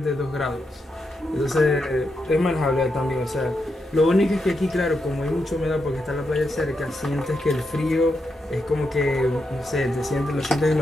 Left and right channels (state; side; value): normal; both; correlation 0.84